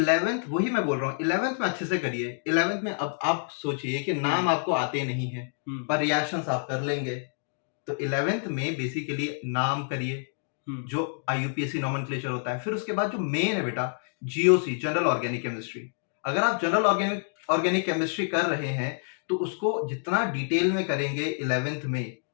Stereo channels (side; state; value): right; silent; digital silence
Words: वही मैं बोल रहा हूँ, 11th में अच्छे से करिए। 11th में अब आप सोचिए कि नाम आपको आते नहीं है पर रिएक्शंस आप कर लेंगे, तो 11th में बेसिकली नाम करिए जो IUPAC नॉमेनक्लेचर होता है। फिर उसके बाद जो मेन है बेटा, GOC, जनरल ऑर्गेनिक केमिस्ट्री। अगर आप जनरल ऑर्गेनिक केमिस्ट्री कर रहे हैं तो उसको जितना डिटेल में करेंगे 11th में,